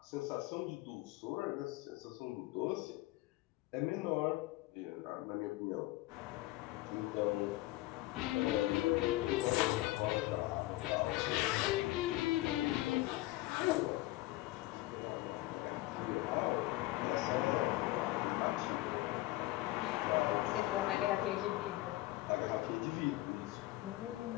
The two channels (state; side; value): quieter; right; 18.6 dB